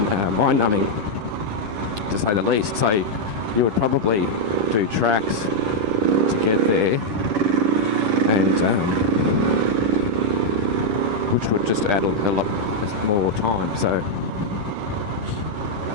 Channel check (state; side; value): late; left; 10 ms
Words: mind-numbing, to say the least. So you would probably do tracks to get there, and which would just add a lot more time. So